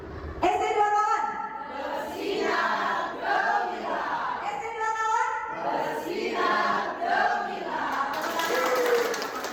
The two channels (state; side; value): identical; both; correlation 1.00